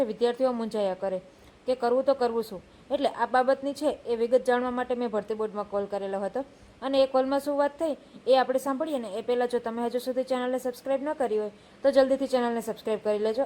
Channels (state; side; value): identical; both; correlation 1.00